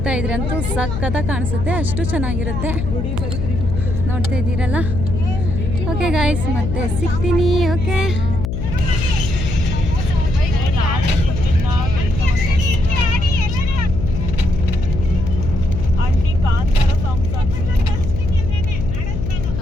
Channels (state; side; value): noise; left; hum, 3 dB below the sound